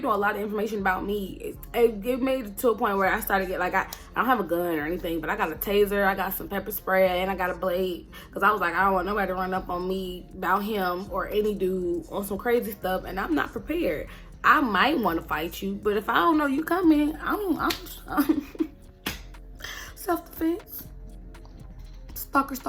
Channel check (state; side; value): identical; both; correlation 1.00